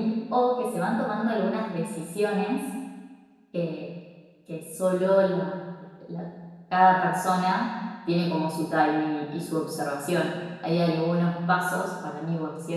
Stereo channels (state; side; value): identical; both; correlation 1.00